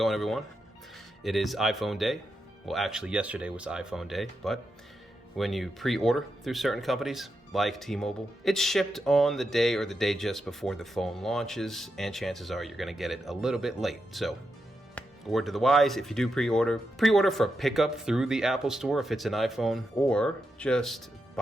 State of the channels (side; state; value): both; normal; correlation 0.86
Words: everyone? It is iPhone day. Well, actually, yesterday was iPhone day, but when you pre-order through certain companies like T-Mobile, it's shipped on the day or the day just before the phone launches, and chances are you're going to get it a little bit late. So, word to the wise, if you do pre-order for pickup through the Apple Store if it's an iPhone, or just